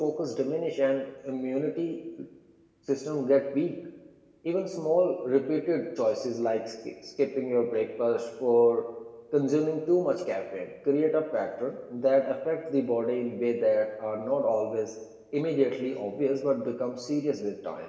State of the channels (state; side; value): identical; both; correlation 1.00